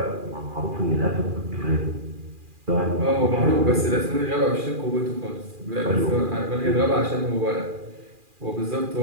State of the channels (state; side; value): late; left; 2.4 ms